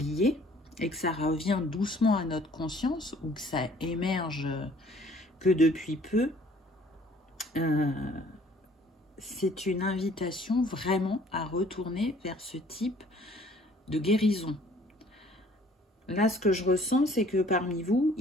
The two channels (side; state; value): both; normal; correlation 0.56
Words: et que ça revient doucement à notre conscience ou que ça émerge que depuis peu, c'est une invitation vraiment à retourner vers ce type de guérison. Là, ce que je ressens, c'est que parmi vous,